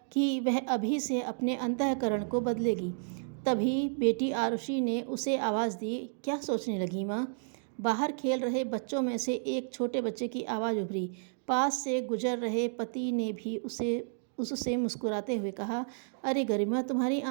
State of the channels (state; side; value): silent; left; digital silence